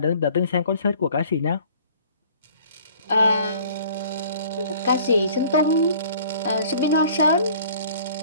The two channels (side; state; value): both; inverted; correlation -0.52